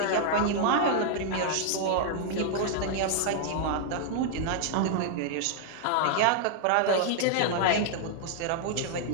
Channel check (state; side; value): different; both; correlation 0.00